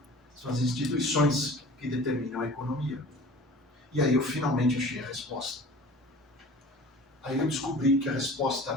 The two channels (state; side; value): normal; both; correlation 0.43